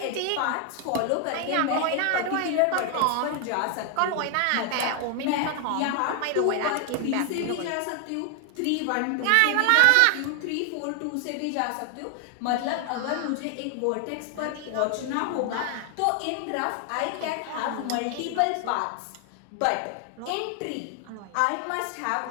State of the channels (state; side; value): different; both; correlation 0.00